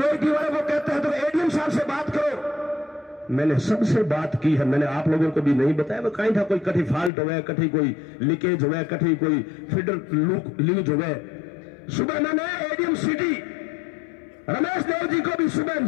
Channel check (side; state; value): right; drops out; at 7.1 s